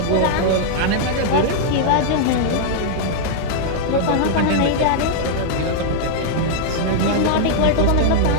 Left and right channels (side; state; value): both; different; correlation -0.01